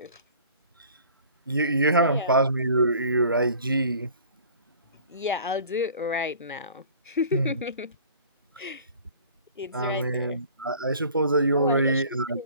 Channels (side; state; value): both; inverted; correlation -0.48